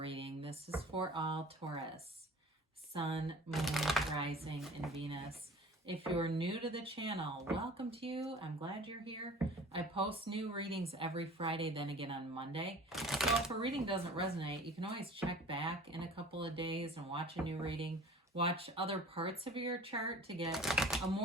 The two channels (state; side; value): normal; both; correlation 0.44